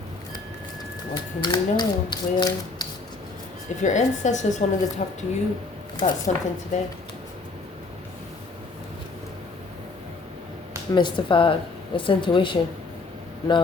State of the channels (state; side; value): quieter; right; 3.8 dB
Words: What can you know, Leo? If your ancestors wanted to talk to you about something today. Mystified. It's intuition.